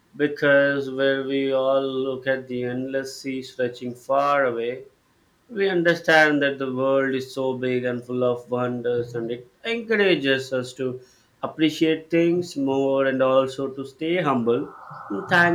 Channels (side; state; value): both; identical; correlation 1.00